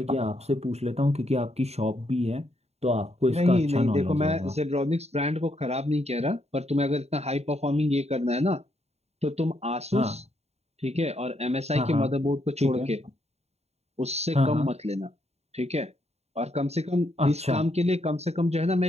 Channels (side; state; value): left; late; 0.31 ms